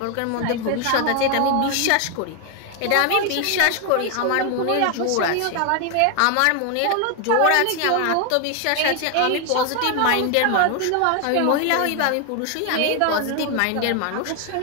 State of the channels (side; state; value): both; different; correlation 0.01